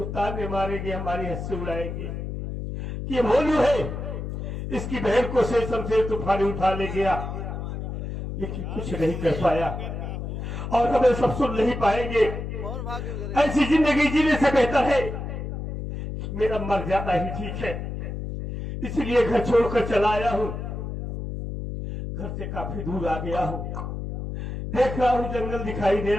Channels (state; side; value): noise; left; hum, 5 dB below the sound